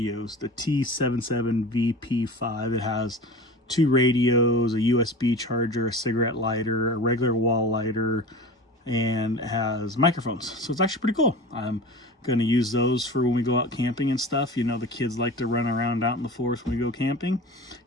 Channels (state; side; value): normal; both; correlation 0.35